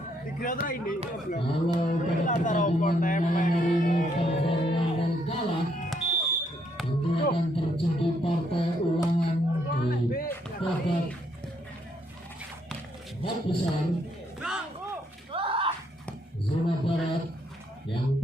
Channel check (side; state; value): both; normal; correlation 0.72